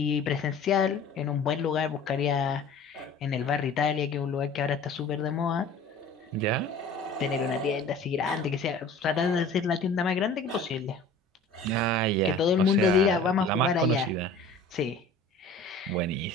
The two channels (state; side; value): quieter; right; 3.2 dB